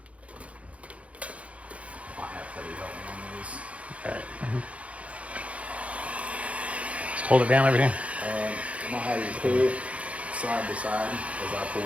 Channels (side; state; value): left; late; 0.064 ms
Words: All right. Just hold it down over here. I'm gonna have you pull side to side as I